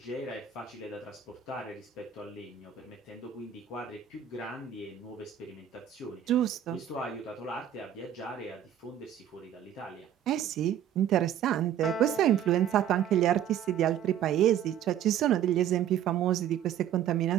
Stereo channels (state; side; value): quieter; left; 10.1 dB